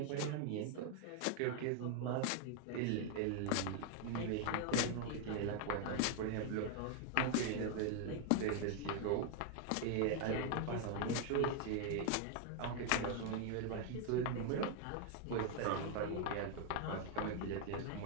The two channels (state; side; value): different; both; correlation 0.00